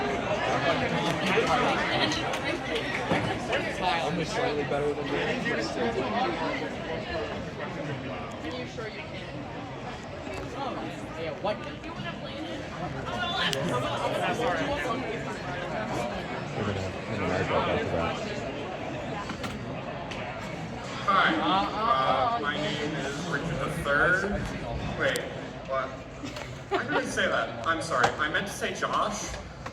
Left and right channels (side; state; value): both; identical; correlation 1.00